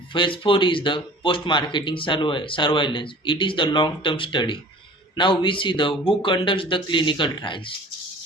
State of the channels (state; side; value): normal; both; correlation 0.44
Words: phase 4 is the post marketing surveillance. It is the long term study. Now we see the who conducts the clinical